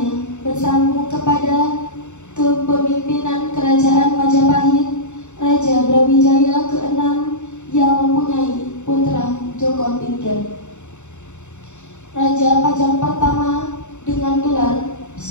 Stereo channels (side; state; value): right; late; 0.84 ms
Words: bersambung kepada kepemimpinan Kerajaan Majapahit, Raja Brawijaya ke-6 yang mempunyai putra Joko Tingkir. Raja Pajang pertama dengan gelar